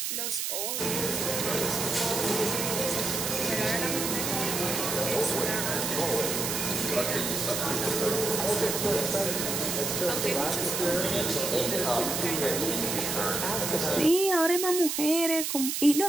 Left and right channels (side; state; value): right; noise; hiss, 1 dB below the sound